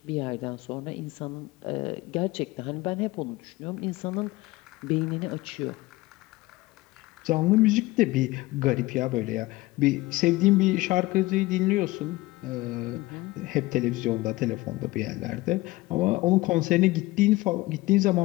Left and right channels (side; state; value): right; quieter; 19.8 dB